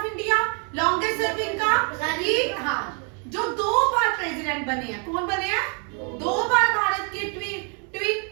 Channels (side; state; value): left; quieter; 38.1 dB